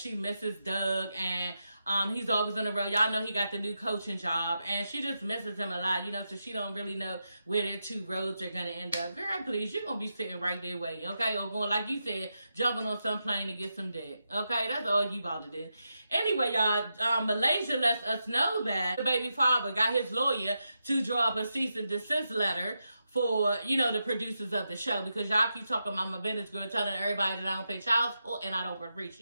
misses Doug and he's always on the road. Y'all know he got the new coaching job, and she just misses him a lot, you know, so she don't really know where their two roads are going to end up. Girl, please, you're going to be sitting right there waiting, okay? Or going, like you said, jumping on some plane to get some dick, okay? That's all you about to do. Anyway, y'all, Malaysia lets us know that the baby father got his lawyer to draw up a cease and desist letter for, you know, the producers of the show, because y'all keep talking about my business girl, telling everybody that I don't pay child support and I don't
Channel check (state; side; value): inverted; both; correlation -0.87